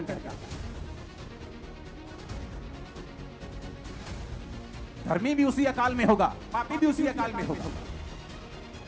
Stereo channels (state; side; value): identical; both; correlation 1.00